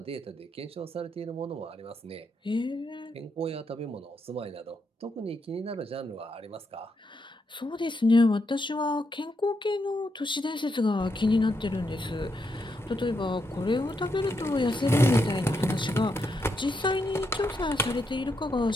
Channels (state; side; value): normal; both; correlation 0.81